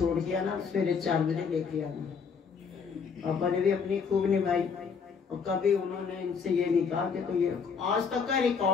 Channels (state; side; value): quieter; right; 5.8 dB